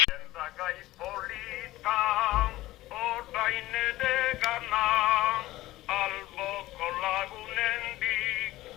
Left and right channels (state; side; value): quieter; right; 16.6 dB